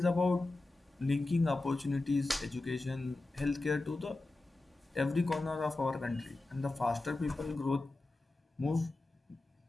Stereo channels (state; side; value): quieter; right; 3.0 dB